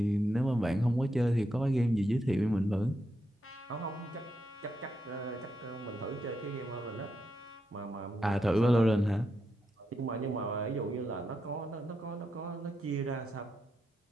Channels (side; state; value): both; normal; correlation 0.83